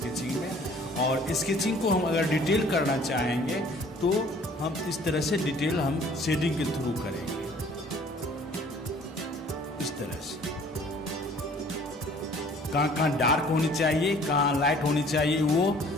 में। और स्केचिंग को हम अगर डिटेल करना चाहेंगे तो हम इस तरह से डिटेल हम शेडिंग के थ्रू करेंगे, इस तरह से। कहाँ डार्क होनी चाहिए, कहाँ लाइट होनी चाहिए,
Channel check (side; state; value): both; normal; correlation 0.54